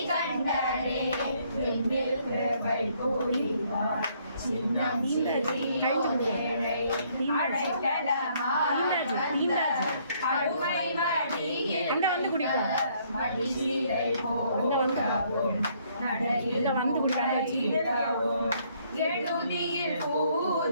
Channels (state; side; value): inverted; both; correlation -0.67